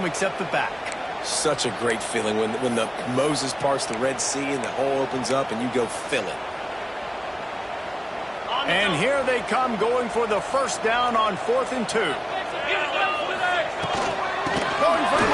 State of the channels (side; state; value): both; identical; correlation 1.00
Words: except the back? Such a great feeling when the Moses parts the Red Sea and the hole opens up and you go fill it. And here they come, going for the first down on 4th and 2. Going for the